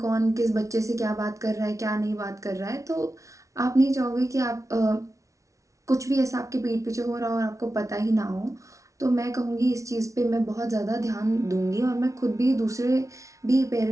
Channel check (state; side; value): late; left; 0.15 ms